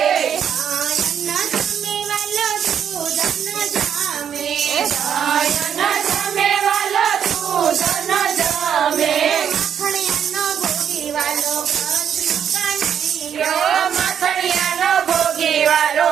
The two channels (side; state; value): left; quieter; 8.5 dB